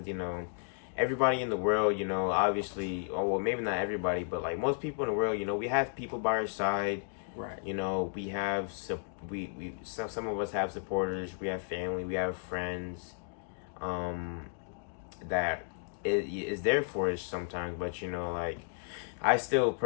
everybody in the world, obviously, oh well, maybe not everybody, but like most people in the world, we have people by our side. Right. We have some of us have supporters, we have family, we have friends, that is there for us sometimes, but like I still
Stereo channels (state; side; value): silent; right; digital silence